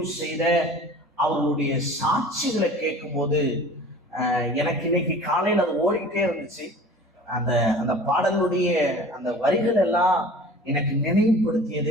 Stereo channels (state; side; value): normal; both; correlation 0.43